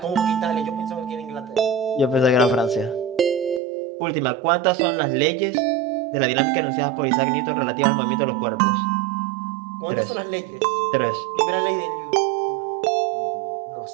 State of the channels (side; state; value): left; drops out; at 3.6 s